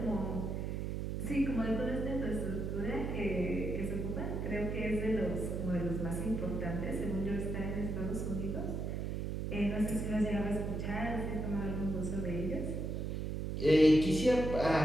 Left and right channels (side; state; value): right; noise; hum, 2 dB below the sound